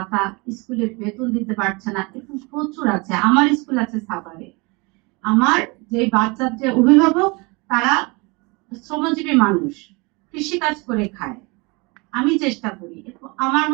স্কুলে বেতন দিতে পারছে না, এরকম প্রচুর আছে। আমার স্কুল আছে সাভারে। আমার যে বাচ্চার যে অভিভাবক, তারা শ্রমজীবী মানুষ, কৃষি কাজ করে খায়। আমি চেষ্টা করি আমার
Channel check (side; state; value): left; quieter; 27.8 dB